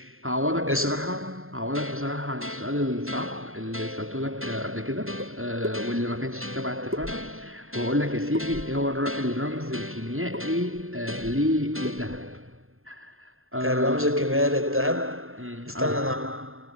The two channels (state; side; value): late; left; 0.61 ms